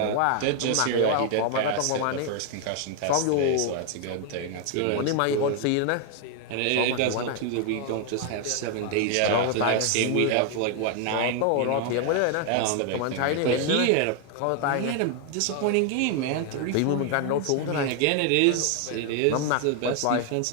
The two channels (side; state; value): both; different; correlation 0.00